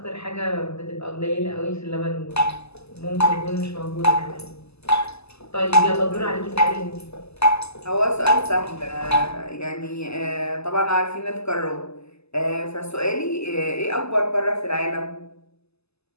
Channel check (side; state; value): right; late; 0.79 ms